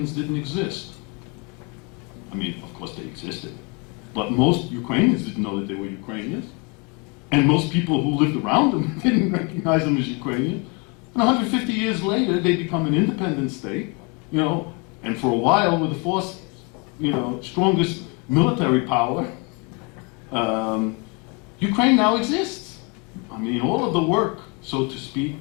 didn't exist. I mean, of course they existed, but most Ukrainians didn't know that they were Ukrainians. And most people who lived around them didn't recognize them as Ukrainian. And 150 years later, they become an independent state, and for a while were the fourth, strongest military power. Ukraine now exists. I mean, all of the work, so to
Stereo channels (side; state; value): right; quieter; 30.3 dB